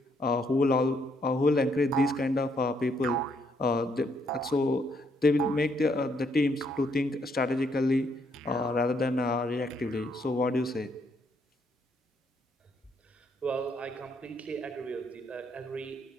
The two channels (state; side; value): normal; both; correlation 0.72